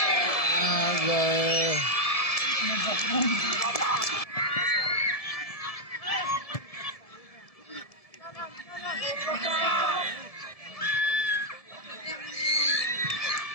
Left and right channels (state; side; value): late; right; 1.7 ms